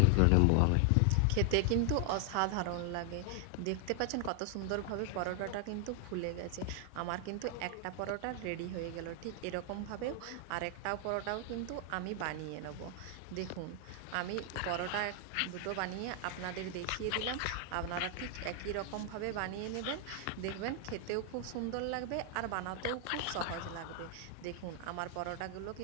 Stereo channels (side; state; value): both; different; correlation 0.00